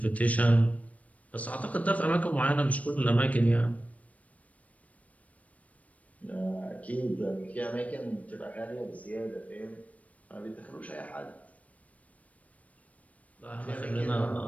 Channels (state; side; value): late; right; 0.068 ms